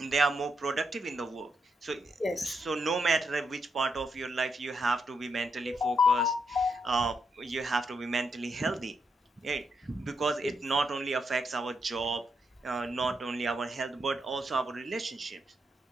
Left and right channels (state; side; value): normal; both; correlation 0.80